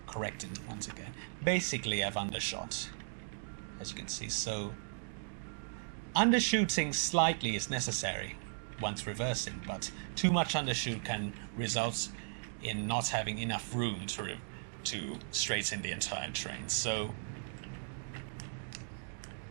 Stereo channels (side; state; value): left; silent; digital silence